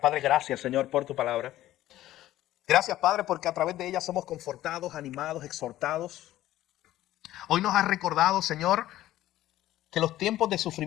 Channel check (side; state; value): right; quieter; 14.4 dB